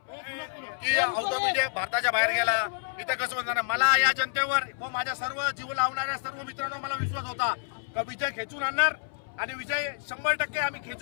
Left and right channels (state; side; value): silent; right; 59 dB below the other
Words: की आउट ऑफ इंडिया, भारताच्या बाहेर गेला, इथं कसं होणार. मला या जनतेवर व माझ्या सर्व जीव लावणाऱ्या सर्व मित्रांनो मला विश्वास होता का विजय खेचून आणणार, आणि विजय 100% आम्ही